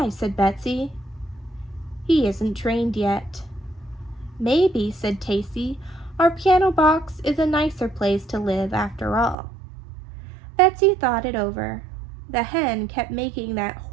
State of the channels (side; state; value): left; drops out; at 9.3 s